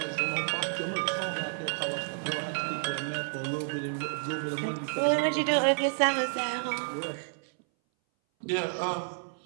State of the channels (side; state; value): left; silent; 58 dB below the other